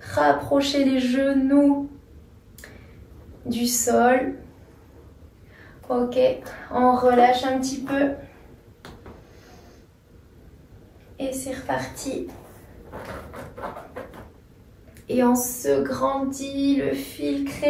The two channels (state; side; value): identical; both; correlation 1.00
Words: rapprocher les genoux du sol. Ok, on relâche un petit peu. Et c'est reparti. Et on se grandit, le fil